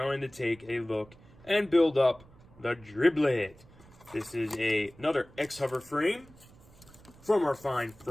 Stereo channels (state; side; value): noise; right; rumble, 24 dB below the sound